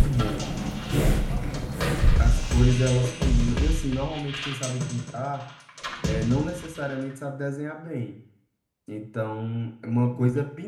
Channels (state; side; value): identical; both; correlation 1.00